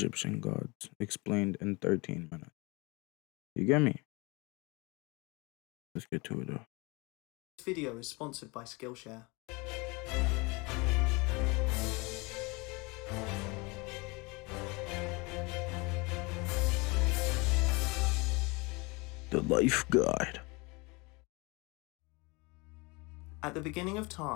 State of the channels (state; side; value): quieter; right; 26.8 dB